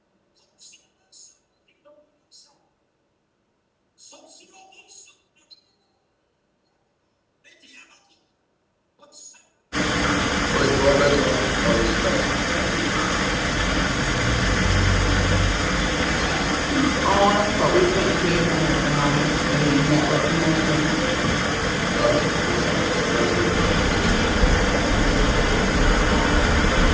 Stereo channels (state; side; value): identical; both; correlation 1.00